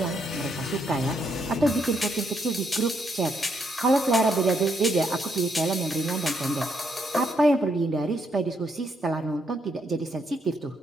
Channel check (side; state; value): both; normal; correlation 0.75